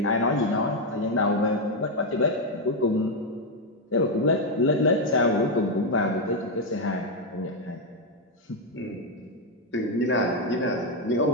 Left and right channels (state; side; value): normal; both; correlation 0.03